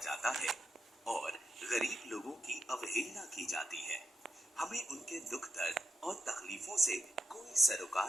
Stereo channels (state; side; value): normal; both; correlation 0.83